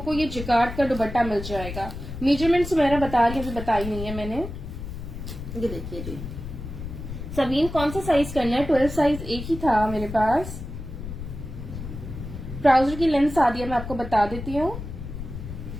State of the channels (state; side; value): noise; left; rumble, 9 dB below the sound